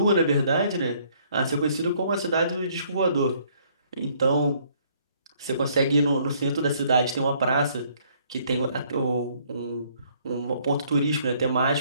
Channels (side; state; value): both; inverted; correlation -0.64